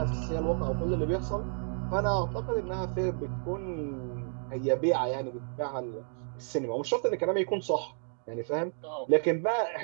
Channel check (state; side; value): silent; left; 57 dB below the other